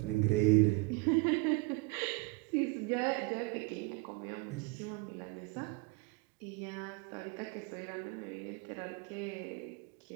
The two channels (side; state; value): left; quieter; 25.4 dB